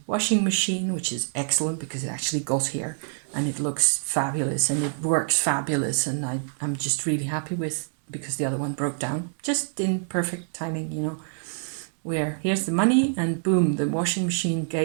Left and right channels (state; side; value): silent; left; digital silence